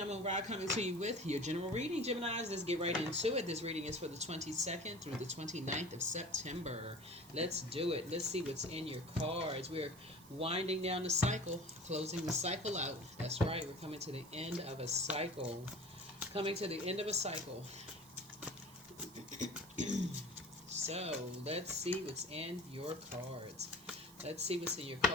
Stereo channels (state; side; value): noise; right; hiss, 21 dB below the sound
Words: Ra coming to you with your general reading. Geminis, let's get right into it. This reading is for the 22nd through the 29th of September. Let's do it. Let's see what's in your cards. We're winding down the cycle, closing the cycle out. That's right. We're coming to the end of a cycle. Coming to the end of a cycle. So let's see what's in your cards. Let's see what's in your